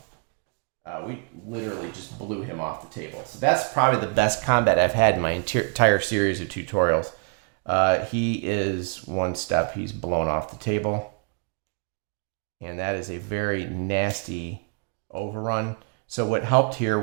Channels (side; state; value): left; quieter; 37.3 dB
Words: we literally just blew him off the table. So that's probably the best combat I've had in my entire series of tutorials. He is 1 step. He's blown off the table. And that is a very nasty overrun. So what helped